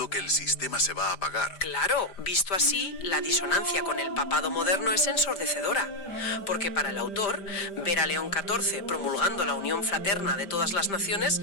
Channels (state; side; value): late; right; 5.1 ms